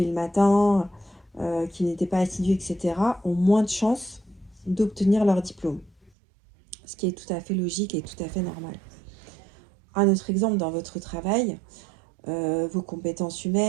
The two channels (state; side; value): drops out; left; at 6.1 s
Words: le matin, qui n'étaient pas assidus, etc., ont moins de chances d'obtenir leur diplôme. Ce qui est tout à fait logique et tout à fait normal. Un autre exemple dans votre travail, vos compétences